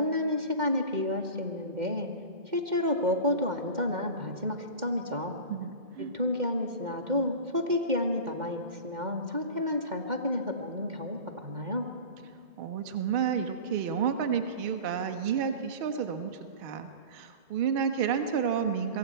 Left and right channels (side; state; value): left; late; 2.1 ms